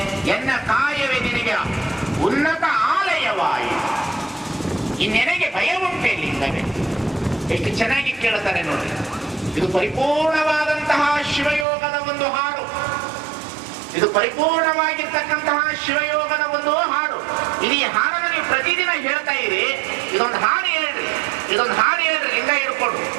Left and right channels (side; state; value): left; drops out; at 11.7 s